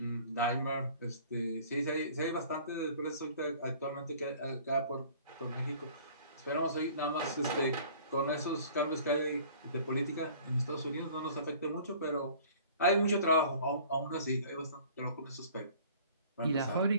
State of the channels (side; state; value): both; inverted; correlation -0.50